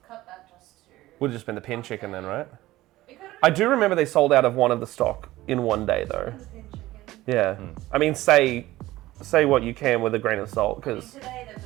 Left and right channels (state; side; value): quieter; left; 16.8 dB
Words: cut that just to. Would have just been the pin chicken then, right? It could have I do remember they sold out of one of the stock in one day though. been the pin chicken. Yeah. I mean, say what you can with a grain of salt, because Today, the